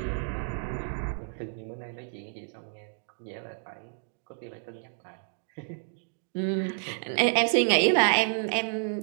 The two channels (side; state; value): left; silent; digital silence